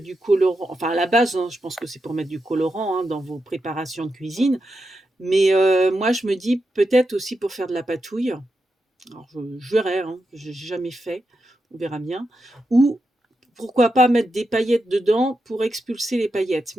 colorant, enfin à la base, hein, je pense que c'est pour mettre du colorant, hein, dans vos préparations de cuisine. Mais moi je me dis peut-être aussi pour faire de la patouille. Alors je verrai, hein, j'ai jamais fait, on verra bien. Ou pourquoi pas mettre des paillettes dedans pour expulser les paillettes.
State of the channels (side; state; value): both; normal; correlation 0.87